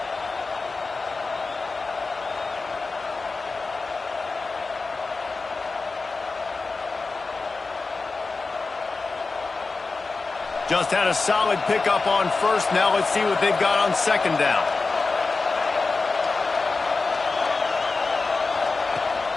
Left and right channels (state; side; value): quieter; right; 4.0 dB